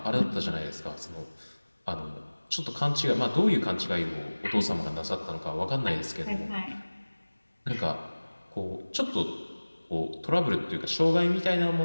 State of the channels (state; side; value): inverted; both; correlation -1.00